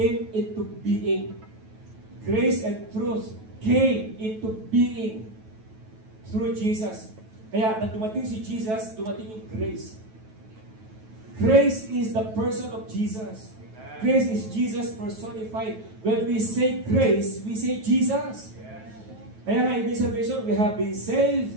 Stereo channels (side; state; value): left; late; 9.2 ms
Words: into being. Grace and truth came into being through Jesus. Kaya nang dumating si Jesus, dumating yung grace. Grace is the person of Jesus. Amen. Grace is Jesus personified. When we say grace, we say Jesus. Yes. Kaya nga, ibig sabihin, we have been saved